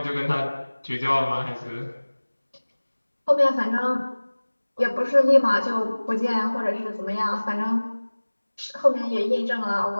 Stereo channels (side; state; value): both; inverted; correlation -1.00